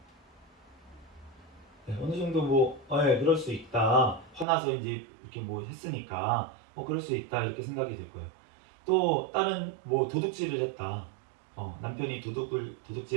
네, 어느 정도 그럴 수 있다. 화나서 이제 이렇게 했으니까 그럴 수 있다 이렇게 생각이 들 거예요. 또 다른 도둑질을 했다. 남편이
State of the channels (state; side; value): drops out; left; at 4.5 s